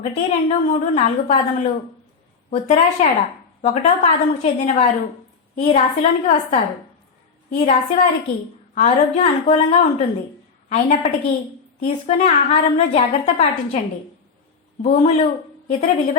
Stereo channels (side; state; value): right; quieter; 5.4 dB